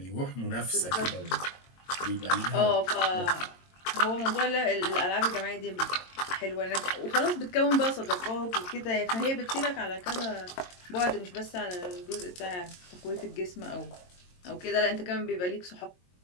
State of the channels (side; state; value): right; late; 22 ms